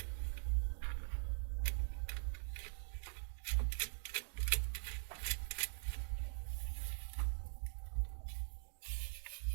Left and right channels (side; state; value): left; silent; digital silence